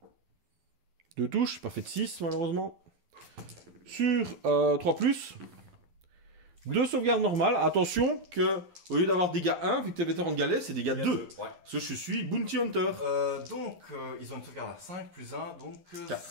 2 touches, pas fait de 6, malheureusement. Sur 3+. 2 sauvegardes normales. Attention que, au lieu d'avoir dégâts 1, vu que t'es vétéran de galet, c'est dégâts 2. Ouais. Parce que je suis Bounty Hunter. Donc, ils ont une sauvegarde à 5 plus 1, donc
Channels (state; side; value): late; left; 12 ms